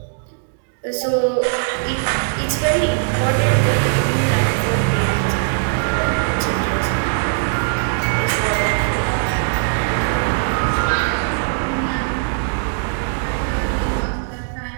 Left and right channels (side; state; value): left; silent; 66 dB below the other